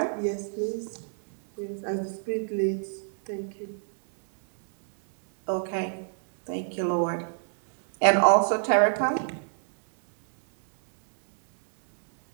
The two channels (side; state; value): left; silent; digital silence